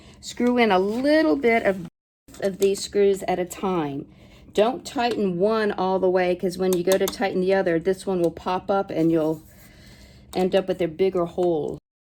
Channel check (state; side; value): identical; both; correlation 1.00